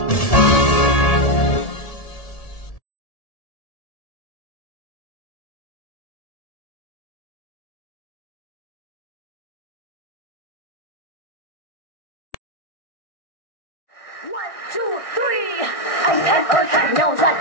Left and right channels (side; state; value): right; late; 1.6 ms